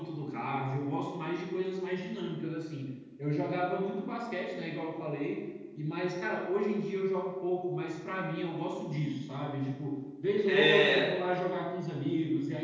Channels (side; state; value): both; identical; correlation 1.00